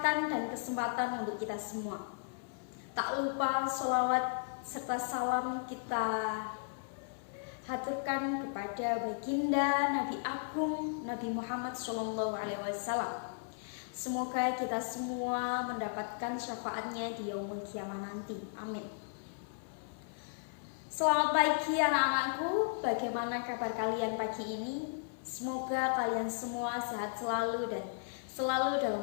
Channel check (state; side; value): silent; right; 54 dB below the other